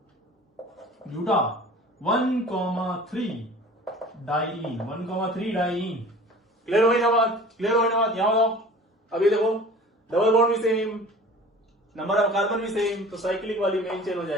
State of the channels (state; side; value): normal; both; correlation 0.43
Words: ब्यूटा 1,3 डाइईन, 1,3 डाइईन। क्लियर हो गई ना बात? यहां बताओ। अभी देखो डबल बॉन्ड भी सेम, नंबर ऑफ कार्बन भी सेम, तो साइक्लिक वाली मेन चेन हो